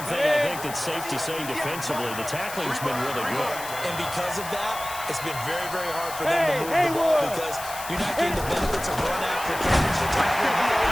thing I think that's safe to say defensively, the tackling's been really good. And because of that, it's been very, very hard for them to move the ball because you're not getting the benefits of run after catch. You're tackling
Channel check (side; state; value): left; noise; hiss, 11 dB below the sound